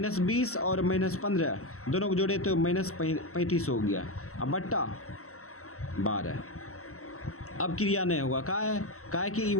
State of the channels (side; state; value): right; late; 0.63 ms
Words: 20 और माइनस 15 दोनों को जोड़े तो माइनस 35 हो गया। अब बट्टा 12। अब क्रिया नहीं होगा, का है कि y